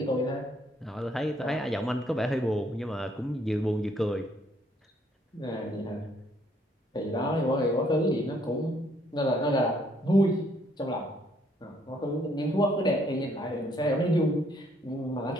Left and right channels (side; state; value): both; normal; correlation 0.67